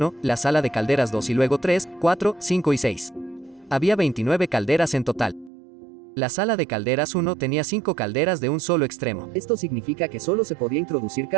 la sala de calderas 2 y luego 3, 4, 5 y 6. Había 29 calderas en total. La sala de calderas 1 tenía 5 calderas de un solo extremo. Esto significa que solo se podía introducir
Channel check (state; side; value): drops out; left; at 5.5 s